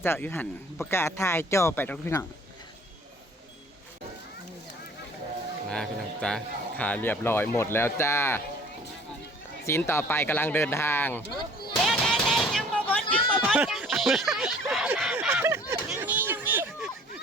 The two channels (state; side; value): normal; both; correlation 0.52